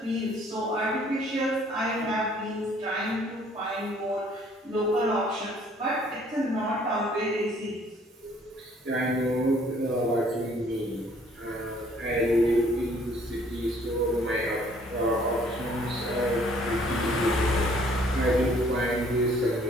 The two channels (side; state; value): both; normal; correlation 0.60